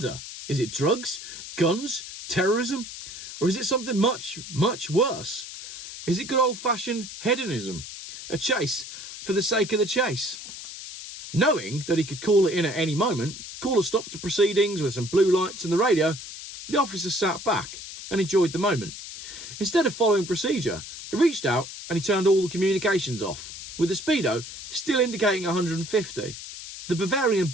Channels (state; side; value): noise; left; hiss, 11 dB below the sound